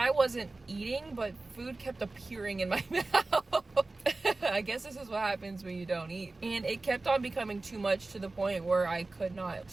wasn't eating, but food kept appearing in my mouth. I guess this is what happens when you don't eat. And it kept on becoming too much to the point where I could not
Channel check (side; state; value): left; quieter; 3.3 dB